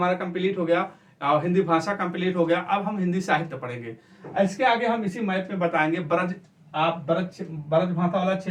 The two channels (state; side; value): identical; both; correlation 1.00